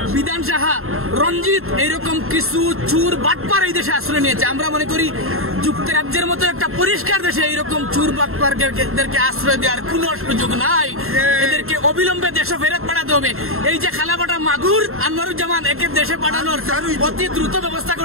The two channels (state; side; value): late; left; 0.62 ms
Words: বিধান সাহা, রঞ্জিত, এইরকম কিছু চোর বাটপার এই দেশে আশ্রয় নিয়েছে। আমরা মনে করি যুক্তরাজ্যের মতো একটা পরিষ্কার দেশে এইরকম চোর বাটপারদেরকে আশ্রয় দেওয়ার কোনো সুযোগ নাই। এদেরকে অবিলম্বে দেশে ফেরত পাঠাতে হবে। এই যে খালাফাটা মাগুর আনোয়ারুজ্জামান, একে দেশে পাঠানোর অতি দ্রুত ব্যবস্থা